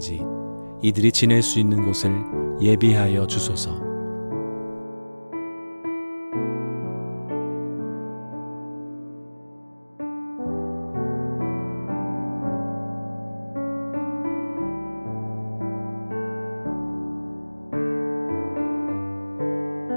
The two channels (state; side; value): inverted; both; correlation -1.00